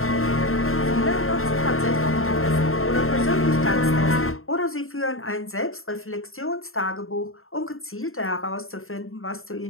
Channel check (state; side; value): late; right; 0.61 ms